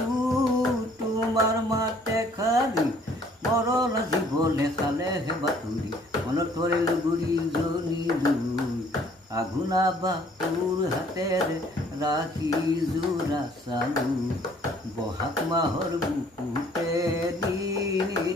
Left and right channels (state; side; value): normal; both; correlation 0.59